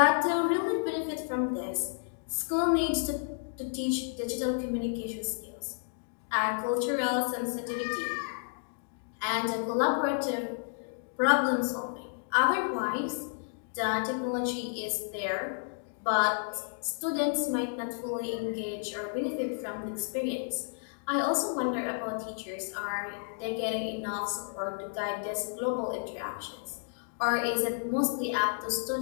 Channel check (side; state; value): right; silent; digital silence